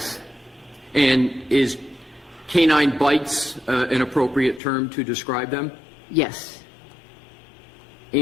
And is canine bites an appropriate term to describe them? Yes.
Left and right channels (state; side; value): drops out; right; at 4.6 s